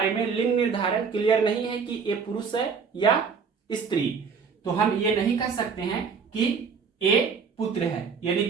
में लिंग निर्धारण क्लियर नहीं है कि ए पुरुष है या स्त्री, तो हम ये नहीं कह सकते हैं कि ए पुत्र है, यानी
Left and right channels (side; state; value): left; quieter; 5.8 dB